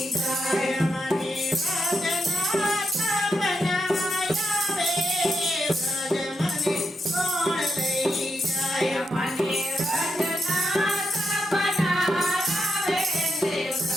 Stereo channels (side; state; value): both; normal; correlation 0.84